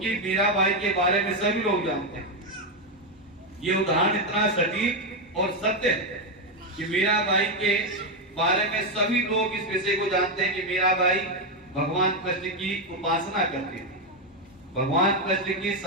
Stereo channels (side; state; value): both; normal; correlation 0.06